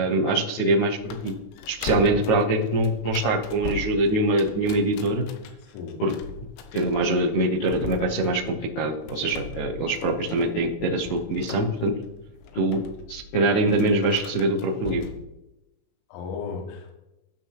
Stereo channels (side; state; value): right; late; 19 ms